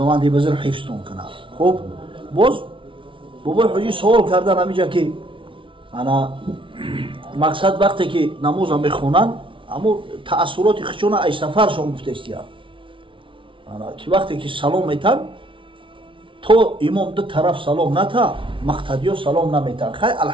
بزرگ حفظتون کنه خب باز بابای حاجی سوال کردن همینجا که انا مقصد وقتی که نماز میخونن اما تأثیرات خشونه ای سفرشون گفتستی انا که وقتی که سلام میتن تو امام دو طرف سلام نتا مقتدیو سلام نمیتن خیلی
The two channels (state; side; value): late; left; 0.25 ms